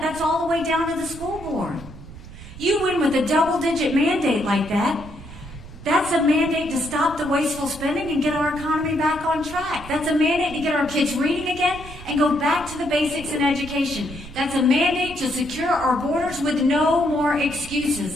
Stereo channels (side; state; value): right; noise; rumble, 15 dB below the sound